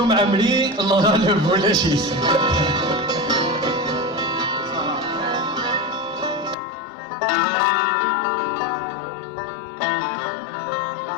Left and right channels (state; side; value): drops out; right; at 6.6 s